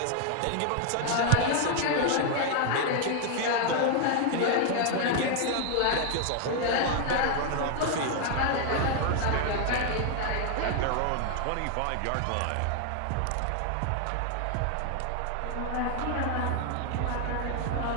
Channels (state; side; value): different; both; correlation 0.00